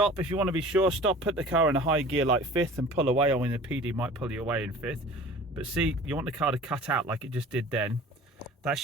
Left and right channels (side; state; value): both; normal; correlation 0.44